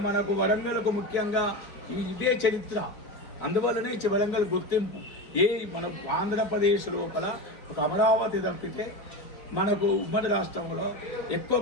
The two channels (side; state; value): right; late; 4.8 ms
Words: మనకు వరంగల్కు ముఖ్యంగా ఇదే చరిత్ర. అందువల్లనే వరంగల్ గుర్తింపు. మన ఆంధ్రప్రదేశ్ లోపల ఒక అమరావతి తప్పితే మనకు ఉమ్మడి రాష్ట్రంలో ఎక్కువ